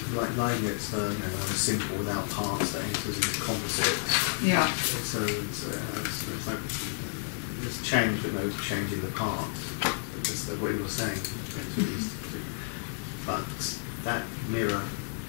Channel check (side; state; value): right; silent; 57 dB below the other